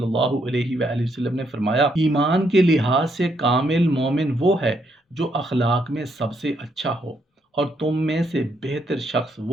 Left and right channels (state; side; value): normal; both; correlation 0.75